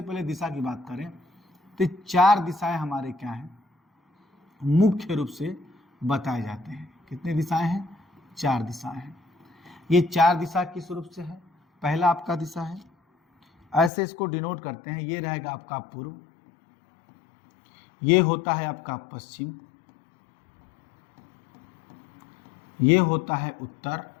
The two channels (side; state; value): right; drops out; at 13.9 s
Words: पहले दिशा की बात करें तो 4 दिशाएं हमारे क्या हैं, मुख्य रूप से बताए जाते हैं। कितनी दिशाएं हैं, 4 दिशाएं हैं। ये 4 दिशा किस रूप से है, पहला आपका दिशा है, ऐसे इसको डिनोट करते हैं। ये रहेगा आपका पूर्व, ये होता है आपका पश्चिम, ये होता है उत्तर